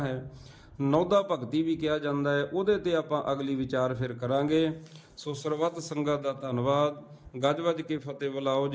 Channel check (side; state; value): both; identical; correlation 1.00